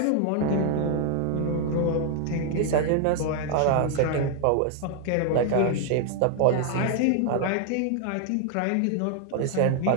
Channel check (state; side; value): different; both; correlation 0.00